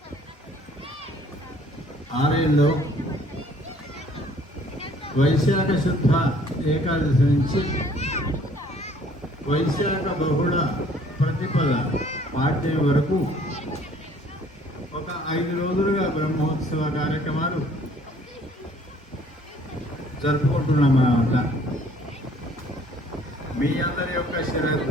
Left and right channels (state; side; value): normal; both; correlation 0.58